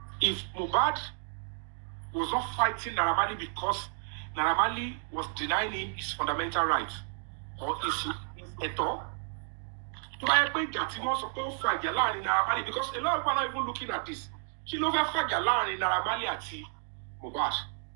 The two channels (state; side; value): silent; left; 57 dB below the other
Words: If Mohbad was not fighting Naira Marley because Naira Marley was denying him his fundamental rights or his eto, because a lot of people are not even looking at this. She ló fẹ́ fàjà láàrin Naira Marley àti Mohbad.